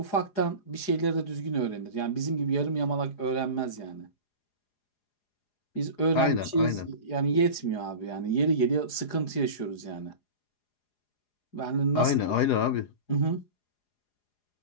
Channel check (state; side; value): late; right; 4.9 ms